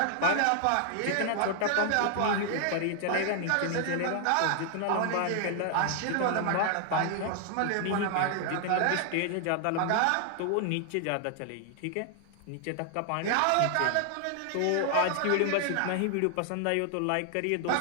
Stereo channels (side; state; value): both; different; correlation 0.00